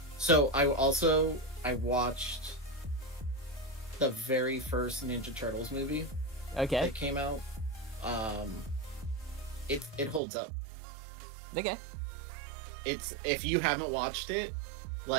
So I watched the very first Ninja Turtles movie Okay. that came out. It holds up. Okay. It's, if you haven't watched it,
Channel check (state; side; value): drops out; left; at 10.2 s